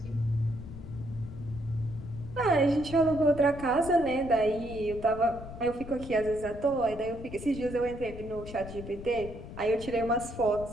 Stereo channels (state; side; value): noise; left; rumble, 12 dB below the sound